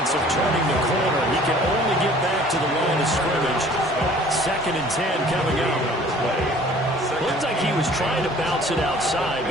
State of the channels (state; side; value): normal; both; correlation 0.51